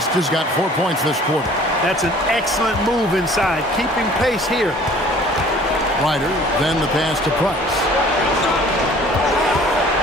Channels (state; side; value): normal; both; correlation 0.51